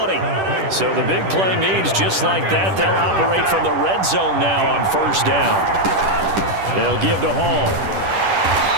So the big play means just like that, they'll operate from the red zone now on 1st down. They'll give to Hall.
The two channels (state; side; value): late; left; 10 ms